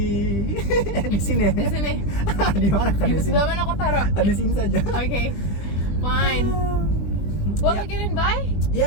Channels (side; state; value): right; late; 20 ms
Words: Di sini. Di sini. Di mana kan? Di sebelah mana aku taruh? Di sini saja. Okay, fine. Well, again, bye.